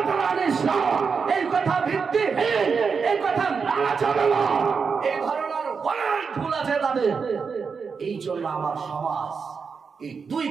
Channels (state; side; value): quieter; left; 5.6 dB